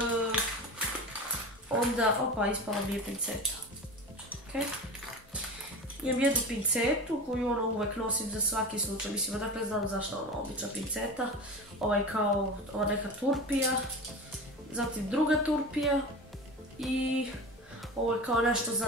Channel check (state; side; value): normal; both; correlation 0.30